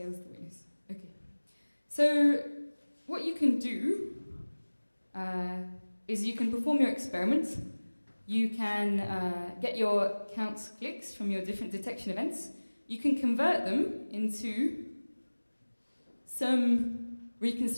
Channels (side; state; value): both; inverted; correlation -1.00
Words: witness. Okay, so what you can do is you can perform your experiment. You can get your count clicks from your different detection events. You can convert them into some